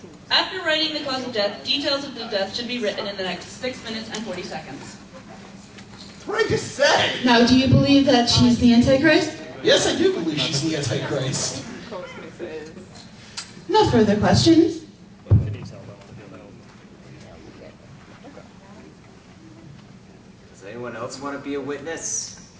After writing the cause of death, details of the death should be written in the next 6 minutes and 40 seconds. That's what I just said! Now, do you believe that she's the Antichrist? Yes, I do believe she's the Antichrist. No further questions. Does anyone else want to be a witness?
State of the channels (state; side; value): identical; both; correlation 1.00